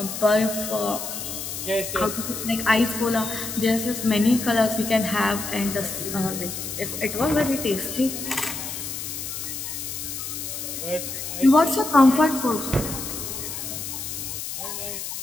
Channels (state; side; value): noise; left; hiss, 6 dB below the sound